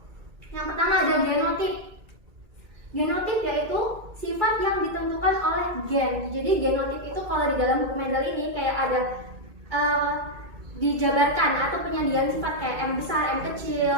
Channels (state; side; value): late; left; 2.3 ms